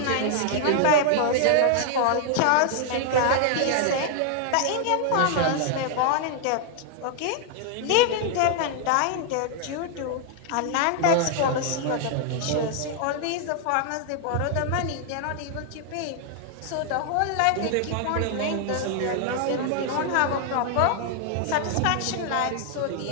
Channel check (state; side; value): different; both; correlation 0.00